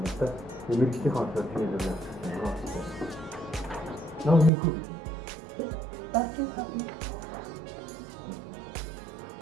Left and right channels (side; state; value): left; drops out; at 4.5 s